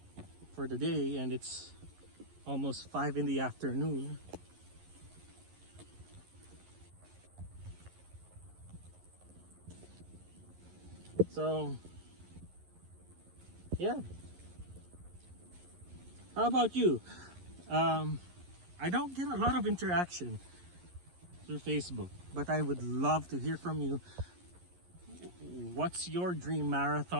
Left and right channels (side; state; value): left; late; 11 ms